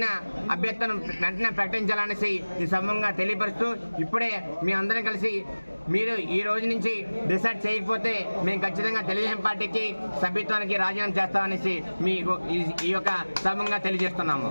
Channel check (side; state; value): both; inverted; correlation -1.00